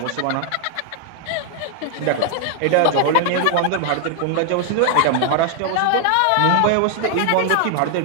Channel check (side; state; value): both; different; correlation 0.00